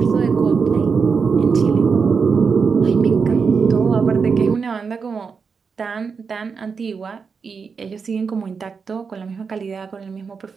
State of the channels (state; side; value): quieter; left; 5.5 dB